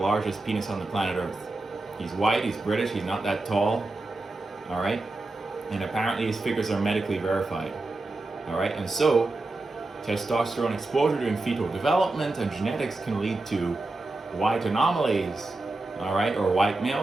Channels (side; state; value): left; quieter; 3.0 dB